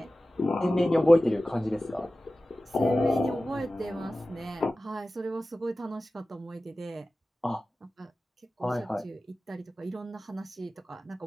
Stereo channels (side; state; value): both; normal; correlation 0.95